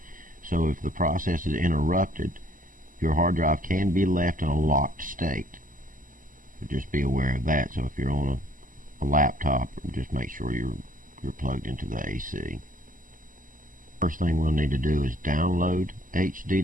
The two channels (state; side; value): late; left; 0.39 ms